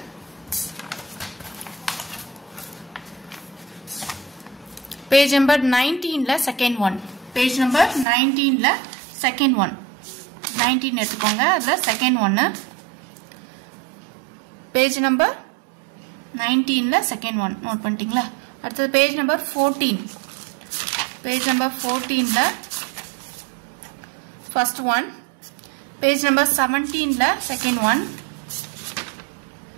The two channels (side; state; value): left; drops out; at 8.1 s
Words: பேஜ் நம்பர் 19ல செகண்ட் ஒன். பேஜ் நம்பர் 19ல செகண்ட் ஒன், 19 எடுத்துக்கோங்க, அதுல செகண்ட் ஒன்னு. பேஜ் நம்பர் 19ல செகண்ட் ஒன் நோட் பண்ணிட்டீங்களா. அடுத்தது பேஜ் நம்பர் 14. பேஜ் நம்பர் 14ல ஃபர்ஸ்ட் ஒன். பேஜ் நம்பர் 17ல செகண்ட் ஒன்,